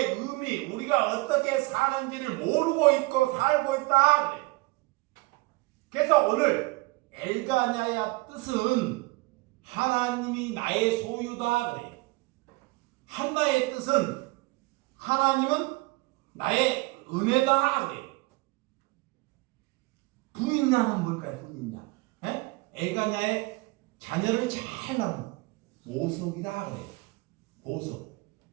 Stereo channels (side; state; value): left; quieter; 23.5 dB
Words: 의미, 우리가 어떻게 사는지를 모르고 있고 살고 있다 그래. 그래서 오늘 엘가냐의 뜻은 하나님이 나의 소유다 그래. 한나의 뜻은 하나님은 나의 은혜다 그래. 부인양은 뭘까요? 부인양. 엘가냐의 자녀를 잘 낳은 보석이다 그래. 보석.